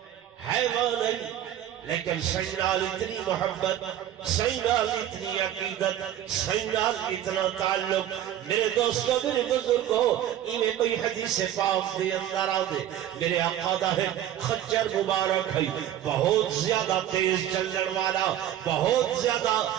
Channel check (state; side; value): quieter; left; 11.5 dB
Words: لیکن سینال اتنی محبت، سینال اتنی عقیدت، سینال اتنا تعلق۔ میرے دوستوں میرے بزرگوں ایمیں کوئی حدیث پاک دے اندر آدھے، میرے آقا دا ہے خچر مبارک ہے، بہت زیادہ تیز چلن والا، بہت زیادہ